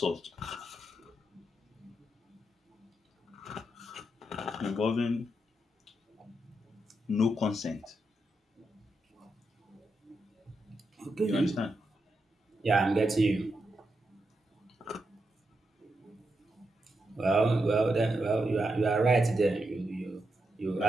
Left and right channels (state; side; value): normal; both; correlation 0.85